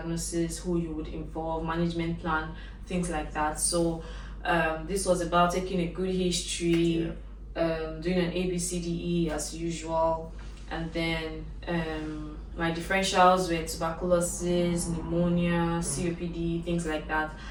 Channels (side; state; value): both; identical; correlation 1.00